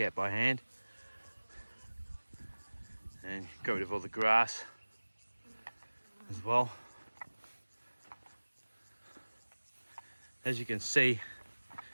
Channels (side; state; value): both; inverted; correlation -1.00